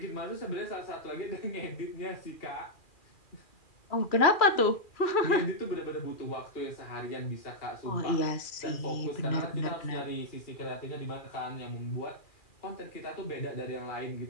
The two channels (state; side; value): late; right; 2.4 ms